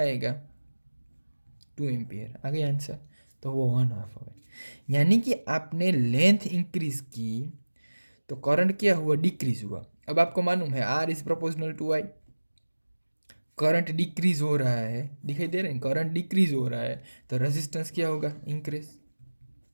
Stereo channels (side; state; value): both; inverted; correlation -1.00